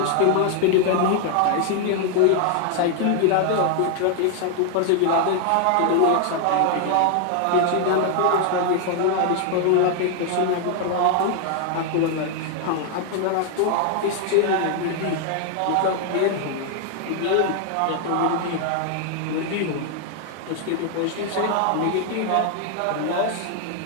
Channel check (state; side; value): different; both; correlation 0.00